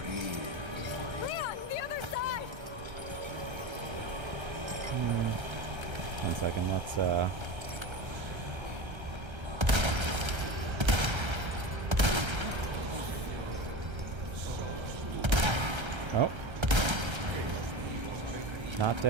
Leon, the other side! One second, let's Oh. Not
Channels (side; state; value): left; late; 1.3 ms